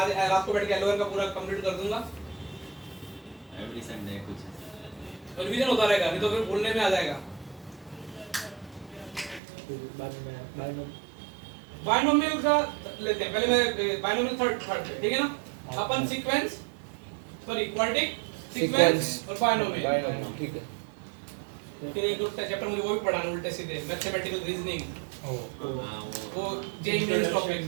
रात को बैठ के एलोवेर का पूरा कंप्लीट कर दूंगा। एवरी संडे कुछ रिवीजन होता रहेगा, नहीं तो फिर भूलने में आ जाएगा। बायनोमियल का लेते हैं पहले, मैं बायनोमियल थर्ड ठीक है ना। अपन सीक्वेंस सॉरी क्वाड्रेटिक सीक्वेंस और बायनोमियल ठीक है। फिर एक दो चैप्टर मुझे वो भी पढ़ाना उल्टे सीधे, मैथमेटिकल रीजनिंग, वो जेई मेंस टॉपिक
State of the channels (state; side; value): drops out; left; at 9.4 s